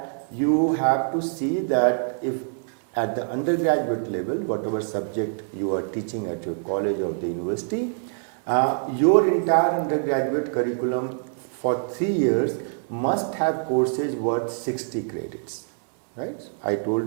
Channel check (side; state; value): left; silent; 62 dB below the other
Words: you have to see that if at the undergraduate level, whatever subject you are teaching at your college or the university, your entire undergraduate curriculum for 3 years must have courses worth 60 credits, right? I